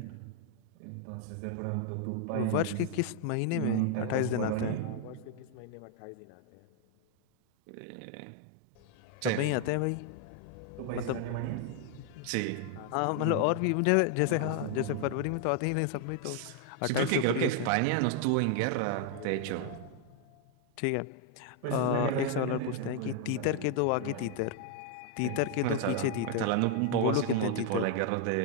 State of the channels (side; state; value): both; different; correlation 0.00